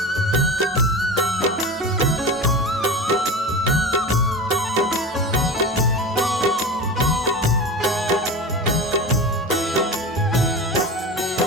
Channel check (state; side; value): normal; both; correlation 0.29